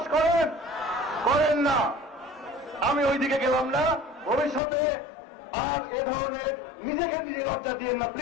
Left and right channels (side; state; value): right; drops out; at 4.6 s